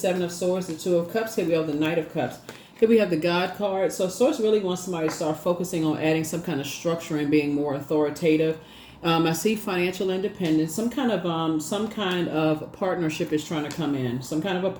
of Swords, the Two of Cups. Here we have the Knight of Cups. Here we have the God card. So Source really wants somebody to start focusing on adding some kind of structure and being more authoritative. I see financial independence. Some kind of partnership is trying to come in. Some kind of a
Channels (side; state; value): both; identical; correlation 1.00